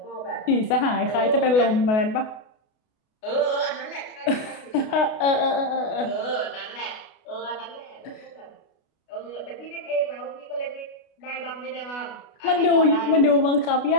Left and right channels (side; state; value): right; late; 32 ms